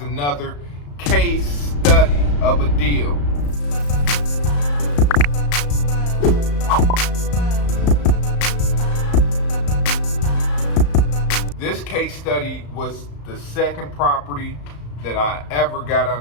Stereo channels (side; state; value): right; late; 35 ms